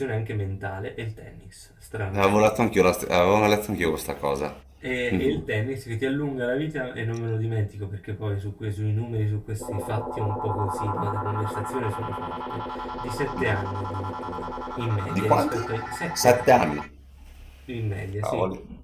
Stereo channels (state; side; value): identical; both; correlation 1.00